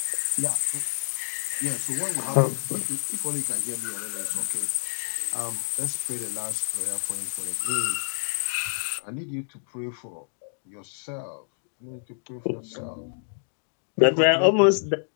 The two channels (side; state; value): right; silent; digital silence